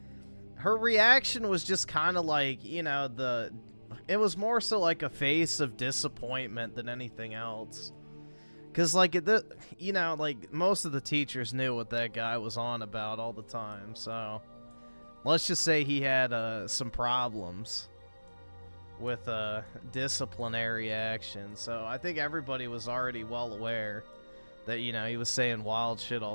Her reaction was just kind of like, you know, It was more so like a face of disappointment than anything else. Because, like, you know, like, most of the teachers knew what that guy was on about all the time, so... Let's just say he had some problems with disciplinary action, so I think everybody was already well aware that, you know, he was saying wild shit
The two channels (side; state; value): both; inverted; correlation -1.00